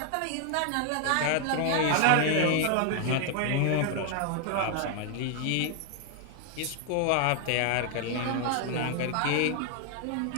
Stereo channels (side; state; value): both; different; correlation 0.00